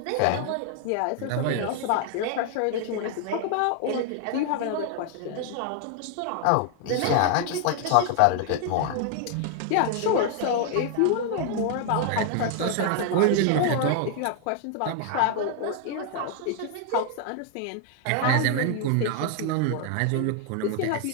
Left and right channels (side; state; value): both; different; correlation 0.00